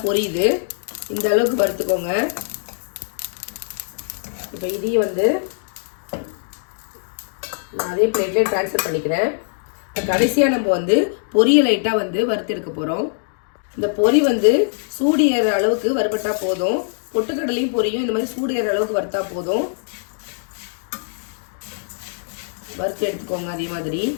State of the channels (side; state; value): right; silent; digital silence